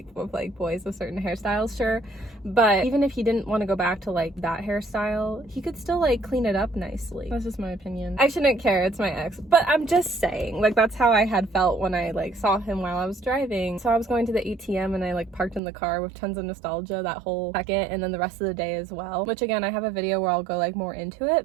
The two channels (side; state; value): left; drops out; at 15.6 s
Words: of like boys with certain hairstyles, sure, but even if he didn't want to go back to like that hairstyle, he could still like clean it up nicely. That's just my opinion. I shouldn't care, it's my ex, but I'm just saying, like that's how I had felt when I like saw him while I was driving. So I was going to the ATM and I like parked in the car with tons of nostalgia that whole second, and then the rest of the day as well, which again I have a video where I'll go like more into